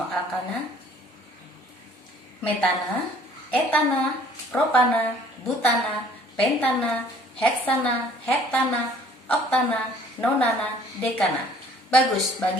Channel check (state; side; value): normal; both; correlation 0.55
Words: alkana: metana, etana, propana, butana, pentana, heksana, heptana, oktana, nonana, dekana. Bagus,